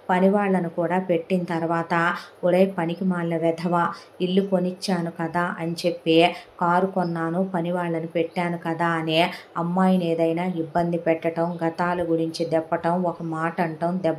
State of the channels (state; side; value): identical; both; correlation 1.00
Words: పని వాళ్ళను కూడా పెట్టిన తర్వాత ఒరే పనికి మాలిన వెధవ, ఇల్లు కొనిచ్చాను కదా అని చెప్పి కారు కొన్నాను పని వాళ్ళని పెట్టాను కదా అనే అమ్మాయిని ఏదైనా ఇబ్బంది పెట్టడం, గతాల గురించి దెప్పటం, ఒక మాట అంటాం,